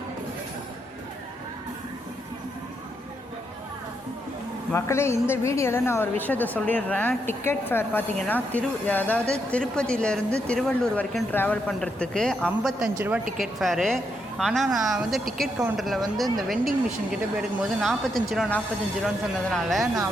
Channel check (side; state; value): both; normal; correlation 0.79